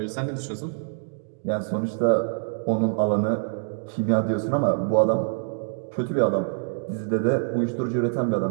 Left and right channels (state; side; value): silent; left; digital silence